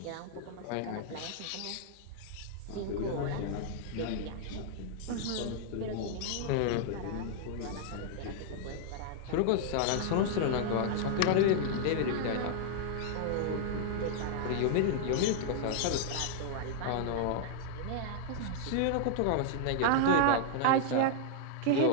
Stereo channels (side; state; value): both; different; correlation -0.01